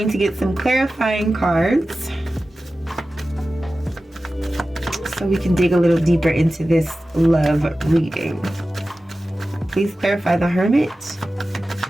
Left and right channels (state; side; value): normal; both; correlation 0.95